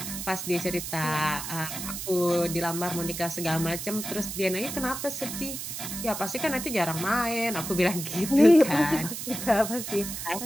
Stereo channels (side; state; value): right; noise; hiss, 6 dB below the sound